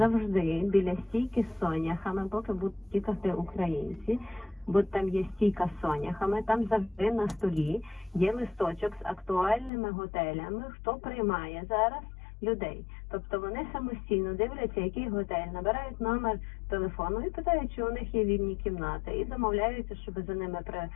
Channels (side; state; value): right; drops out; at 9.7 s